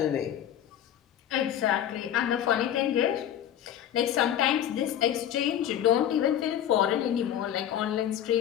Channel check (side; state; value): right; quieter; 10.6 dB